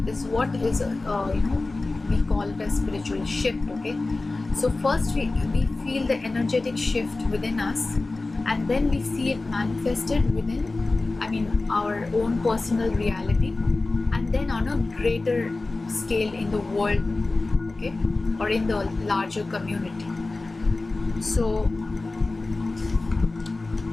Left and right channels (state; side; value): quieter; right; 3.3 dB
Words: is what is we call it a spiritual shift. Okay, so first we feel the energetic shift within us, and then we see it manifested within, our own personal reality, and then on a greater scale in the world, okay, or in the larger community. So